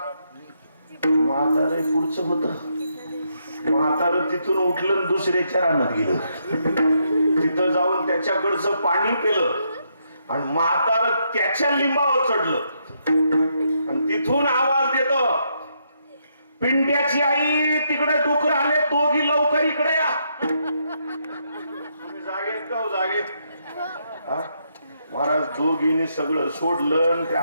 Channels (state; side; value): inverted; both; correlation -0.77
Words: म्हातारे पुढचं होत. म्हातार तिथून उठलं, दुसऱ्याच्या रानात गेलं, तिथं जाऊन त्याच्याकडचं पाणी पिलं आणि म्हातार त्याच्या लिंबावर चढलं आणि तिथून आवाज देतो, पिंट्याची आई तिकडे डुकर आले, दोघी लवकर इकडे या. तुम्ही जागेत का हो, जागेत? हा? महाराज दोघींनी सगळं सोडलं आणि त्या